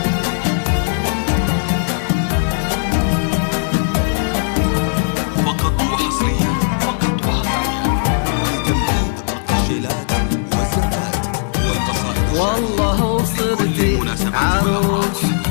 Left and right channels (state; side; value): silent; right; 62 dB below the other